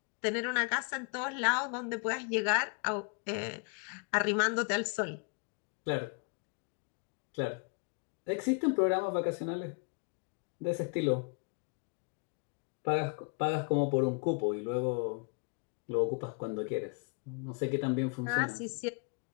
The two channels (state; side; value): quieter; right; 35.9 dB